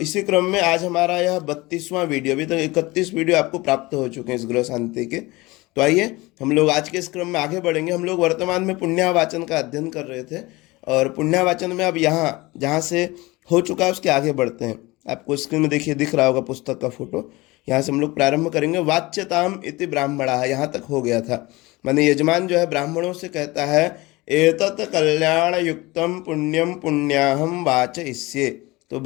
इसी क्रम में आज हमारा यह 32वां वीडियो, अभी तक 31 वीडियो आपको प्राप्त हो चुके हैं इस ग्रह शांति के। तो आइए हम लोग आज के इस क्रम में आगे बढ़ेंगे। हम लोग वर्तमान में पुण्यावाचन का अध्ययन कर रहे थे और पुण्यावाचन में अब यहाँ जहाँ से हो चुका है उसके आगे बढ़ते हैं। आपको स्क्रीन में देखिए दिख रहा होगा पुस्तक का फोटो। यहाँ से हम लोग प्रारंभ करेंगे। वाच्यताम इति ब्राह्मणा, यहाँ तक हो गया था। माने यजमान जो है ब्राह्मणों से कहता है एतत् कल्याण युक्तम पुण्यम पुण्याहम वाचयिष्ये। तो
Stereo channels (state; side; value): quieter; right; 21.7 dB